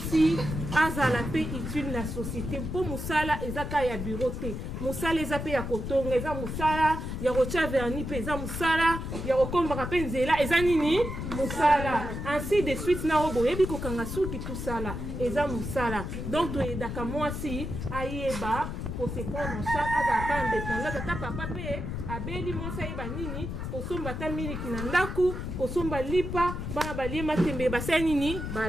azala pe utile la société. Pour musala ezaka ya bureau te. Musala ezape ya kotonga, eza musala ya rocha verni pe eza musala ya kokomba pe nzela eza nini? Musala. Ainsi de suite na obo yebi kokanga suki tout sala eza musala. Donc to edaka mwasi ayeba pour se prendre en charge azala indépendant tata papa pe abeli mwasi ayeba nini kosomba ta miliki na ndaku kosomba lipa bana balie matembe basa nini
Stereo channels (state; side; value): noise; left; rumble, 5 dB below the sound